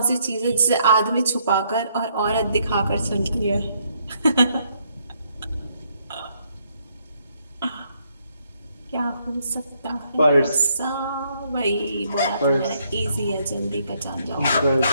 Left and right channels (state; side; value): inverted; both; correlation -0.72